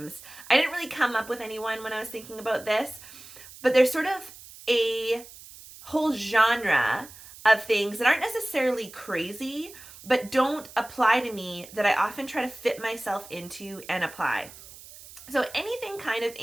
I didn't really come up with anyone when I was thinking about this, but there's sort of a whole genre of things that aren't necessarily crazy, but don't apply to me that I often try to fit myself into and apply. So anything kind of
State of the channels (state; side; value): noise; right; hiss, 18 dB below the sound